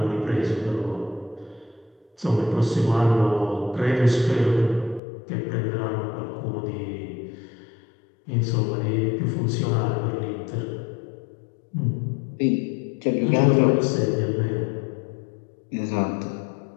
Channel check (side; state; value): right; drops out; at 5.0 s